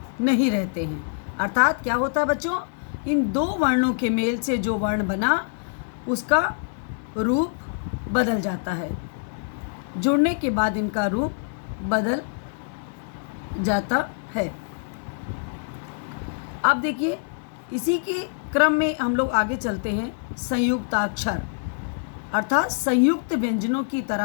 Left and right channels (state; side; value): silent; right; digital silence